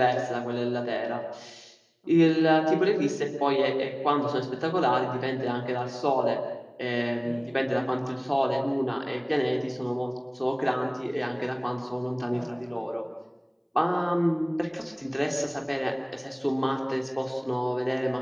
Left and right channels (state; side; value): identical; both; correlation 1.00